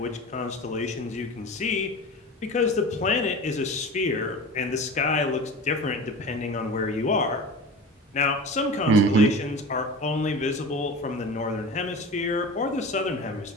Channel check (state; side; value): normal; both; correlation 0.33